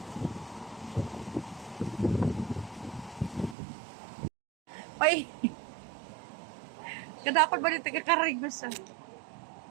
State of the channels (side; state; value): left; drops out; at 3.6 s